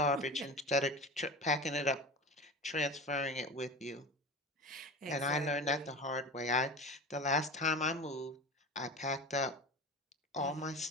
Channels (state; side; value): normal; both; correlation 0.31